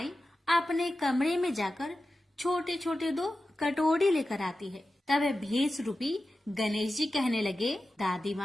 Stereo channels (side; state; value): both; normal; correlation 0.93